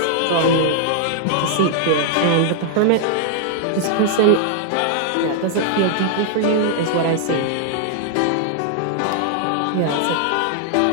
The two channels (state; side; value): different; both; correlation -0.01